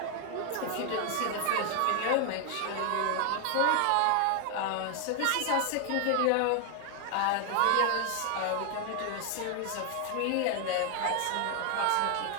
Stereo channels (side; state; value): both; different; correlation 0.00